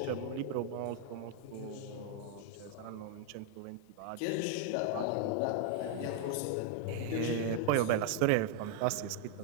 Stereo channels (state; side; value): different; both; correlation 0.00